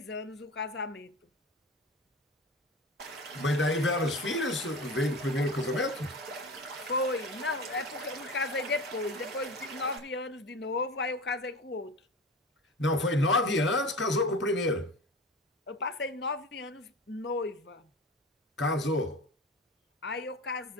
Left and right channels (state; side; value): normal; both; correlation 0.32